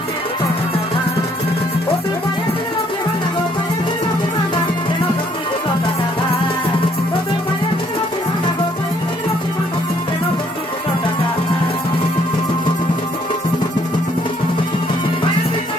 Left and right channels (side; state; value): both; normal; correlation 0.66